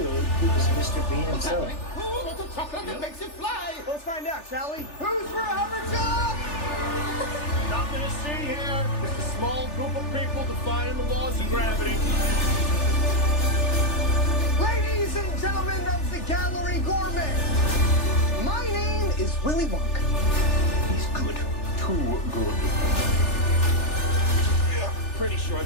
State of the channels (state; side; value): late; right; 3.4 ms